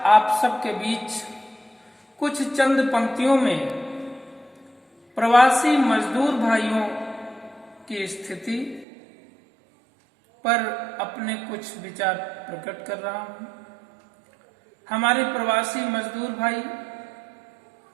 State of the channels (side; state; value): left; drops out; at 8.8 s